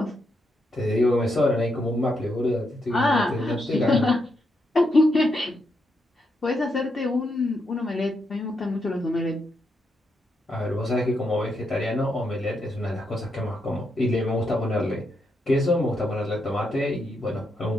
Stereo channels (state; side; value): normal; both; correlation 0.81